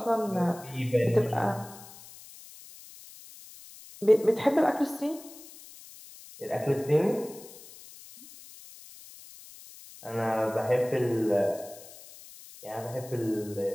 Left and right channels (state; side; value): noise; left; hiss, 19 dB below the sound